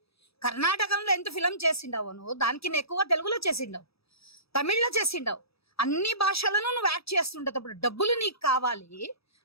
కర్ణాటకంలో ఎంత ఫిలం చేసిండవు నువ్వు? దానికి ఎక్కువ తెలుగులో చేసిండవు, తమిళ్లో చేసిండవు. అన్ని భాషలను నువ్వు యాక్ట్ చేస్తుంటప్పుడు డబ్బులు నీకు కావాలి,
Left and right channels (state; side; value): late; right; 0.77 ms